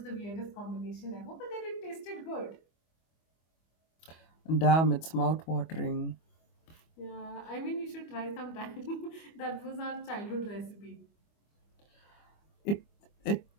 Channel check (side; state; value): right; late; 25 ms